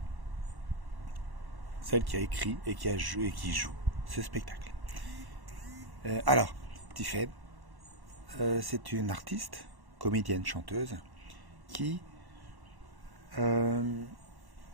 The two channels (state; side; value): late; left; 1.1 ms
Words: celle qui a écrit et qui joue ce spectacle. Alors, Tiffen, c'est une artiste, comédienne, chanteuse, qui...